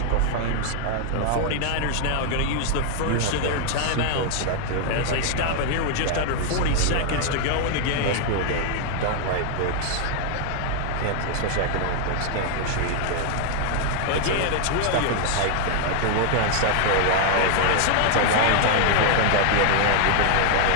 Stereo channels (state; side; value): different; both; correlation 0.00